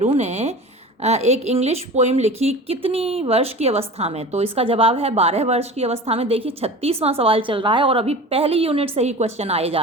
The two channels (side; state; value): both; normal; correlation 0.36